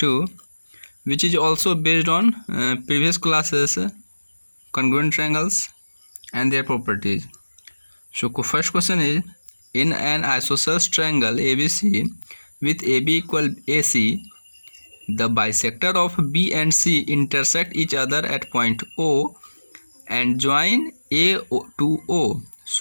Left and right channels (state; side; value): inverted; both; correlation -1.00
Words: which is also based on previous classes, congruent triangles and their properties. So first question is, in an isosceles triangle ABC with AB equal AC, the bisector of B and C intersect each other at point O and join A to O